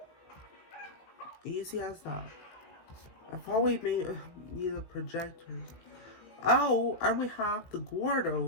Easy as that. I thought we need a projector. Oh, and we have the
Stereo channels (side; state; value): right; late; 18 ms